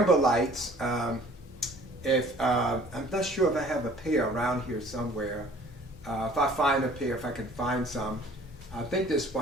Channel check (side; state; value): both; normal; correlation 0.52